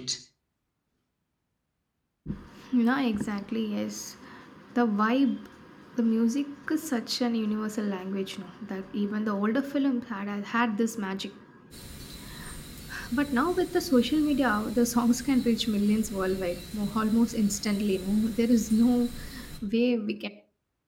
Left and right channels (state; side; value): identical; both; correlation 1.00